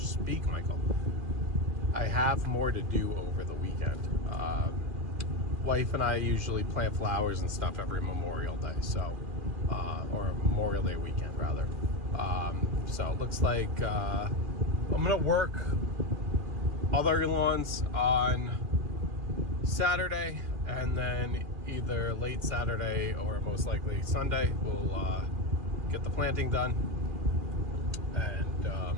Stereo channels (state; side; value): late; left; 2.4 ms